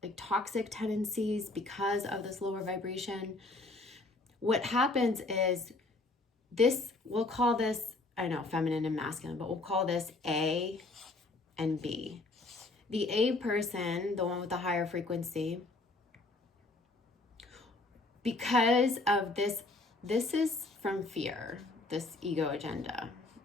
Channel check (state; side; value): quieter; right; 3.1 dB